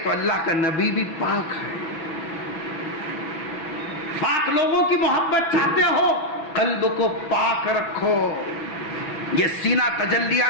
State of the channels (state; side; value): late; right; 6.0 ms